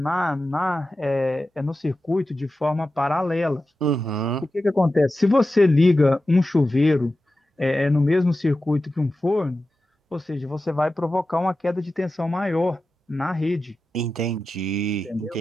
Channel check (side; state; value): both; normal; correlation 0.93